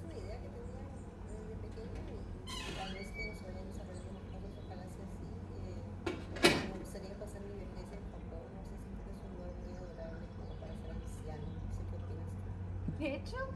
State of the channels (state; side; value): identical; both; correlation 1.00